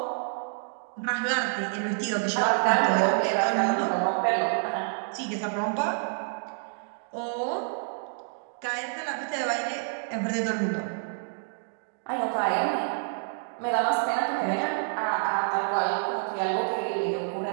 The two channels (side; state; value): left; silent; digital silence